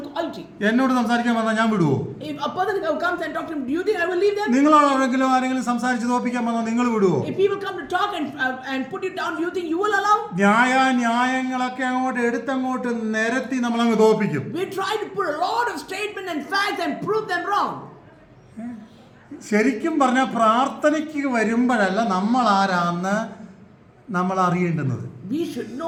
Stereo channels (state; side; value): identical; both; correlation 1.00